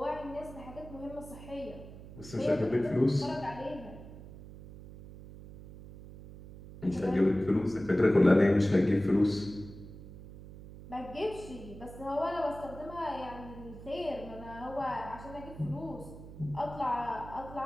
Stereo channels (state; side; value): noise; right; hum, 15 dB below the sound